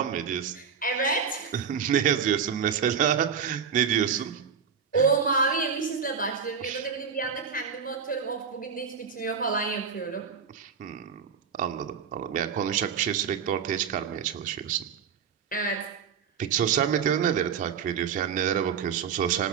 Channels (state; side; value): quieter; left; 6.7 dB